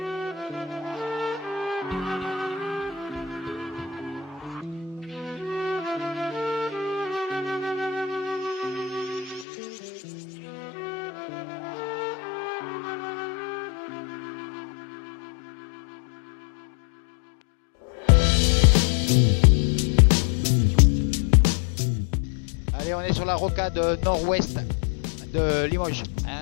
Allez, on est sur la rocade nord-ouest de Limoges.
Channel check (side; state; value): right; drops out; at 9.5 s